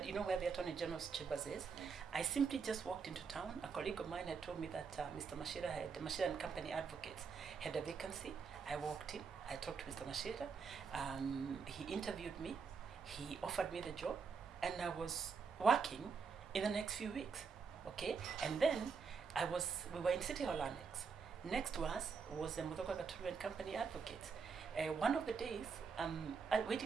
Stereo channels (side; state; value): left; quieter; 5.6 dB